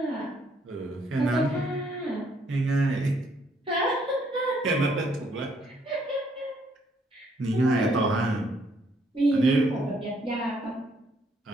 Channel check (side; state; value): both; normal; correlation 0.69